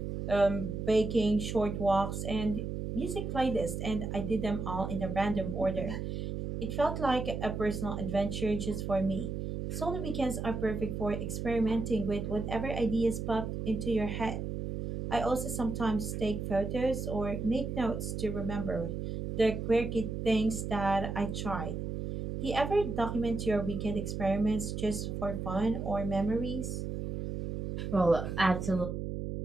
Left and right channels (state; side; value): noise; right; hum, 4 dB below the sound